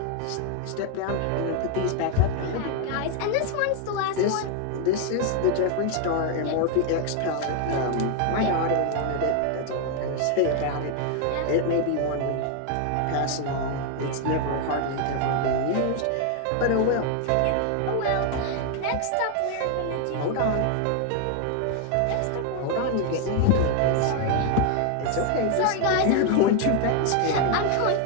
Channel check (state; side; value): different; both; correlation 0.01